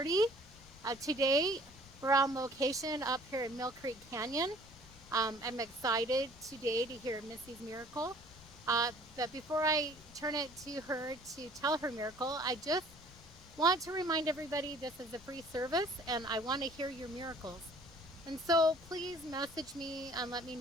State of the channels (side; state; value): left; noise; rumble, 21 dB below the sound